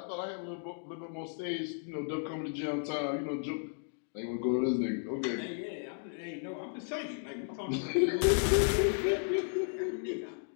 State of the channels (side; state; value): right; silent; 55 dB below the other